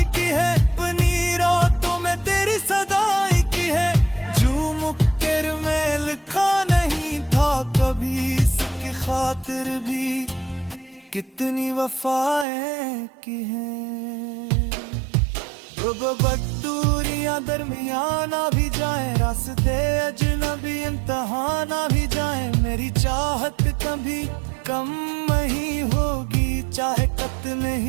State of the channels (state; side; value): drops out; left; at 12.5 s